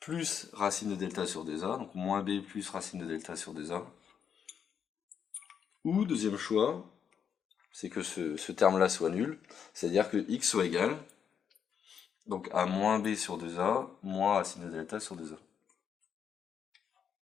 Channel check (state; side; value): quieter; right; 7.6 dB